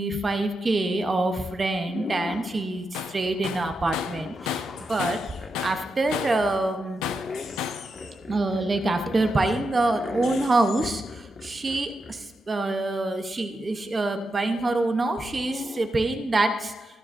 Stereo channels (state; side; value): normal; both; correlation 0.86